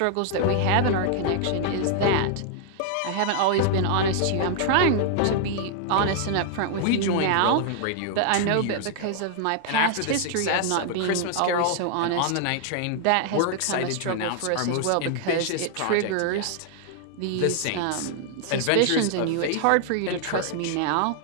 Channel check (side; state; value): both; different; correlation 0.00